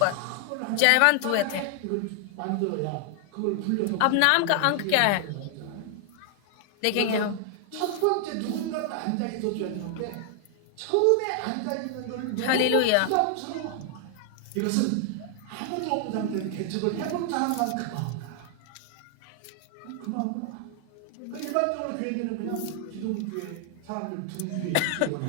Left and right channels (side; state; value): both; different; correlation 0.00